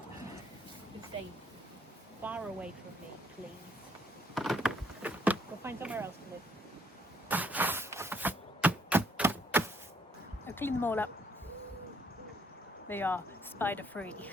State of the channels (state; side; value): normal; both; correlation 0.66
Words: Stay far away from me, please. Go find somewhere else to live. I've cleaned them all up. They are spider free.